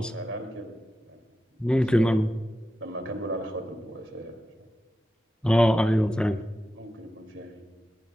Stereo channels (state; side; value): normal; both; correlation 0.91